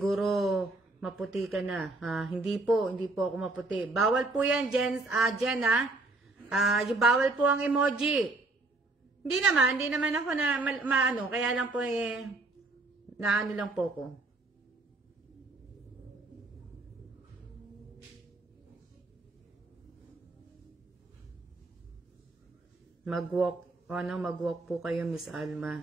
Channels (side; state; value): left; quieter; 3.1 dB